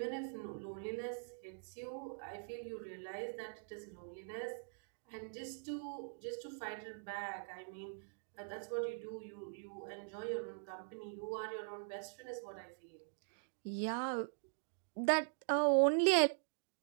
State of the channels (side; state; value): left; silent; digital silence